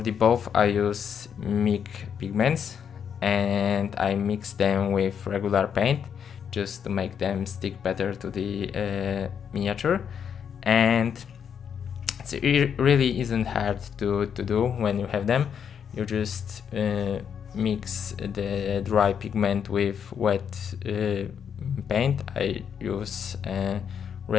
the both I use MIG pigments, and I mix them with regular paint just to make them stick better to the miniature. And it really isn't hard to do when you have them. You just mix the dry pigment with wet paint. I use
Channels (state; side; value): quieter; right; 7.7 dB